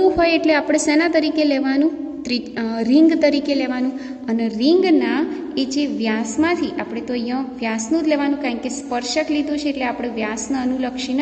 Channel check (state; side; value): identical; both; correlation 1.00